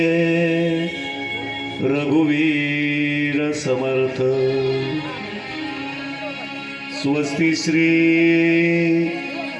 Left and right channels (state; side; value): identical; both; correlation 1.00